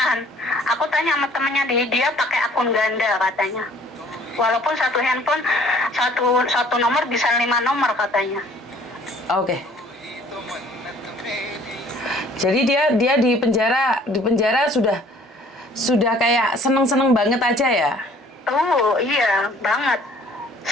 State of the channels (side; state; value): both; normal; correlation 0.55